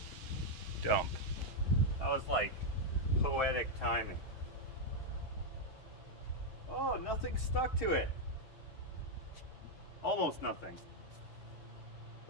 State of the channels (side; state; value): right; late; 6.8 ms